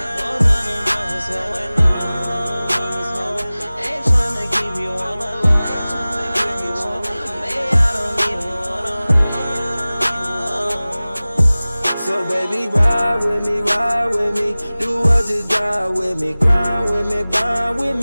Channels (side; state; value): both; inverted; correlation -0.98